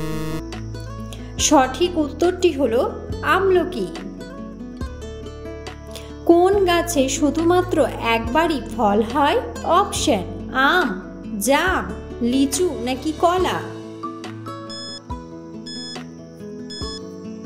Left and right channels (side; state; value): both; identical; correlation 1.00